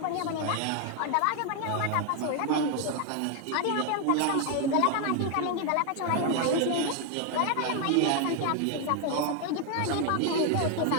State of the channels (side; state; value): both; different; correlation 0.01